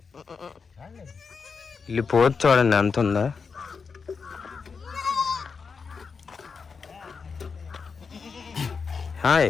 ఇల్లు పోతు చూడండి ఎంత ఉందా. Hi,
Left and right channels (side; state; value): right; quieter; 5.3 dB